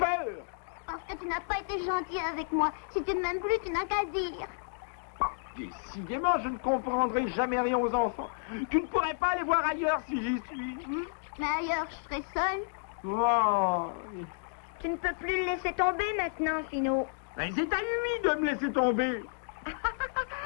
Parce que tu n'as pas été gentil avec moi. Si tu ne m'aimes plus, tu n'as qu'à dire. Décidément, je ne comprendrai jamais rien aux enfants. Tu ne pourrais pas aller voir ailleurs si j'y suis. Mais ailleurs, je serai seule. Oh. Tu ne peux plus le laisser tomber maintenant, Finot. Mais c'est à lui de me laisser tomber.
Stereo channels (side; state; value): right; silent; digital silence